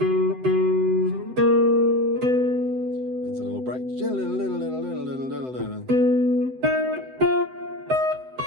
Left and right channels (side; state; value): left; late; 7.8 ms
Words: a little break.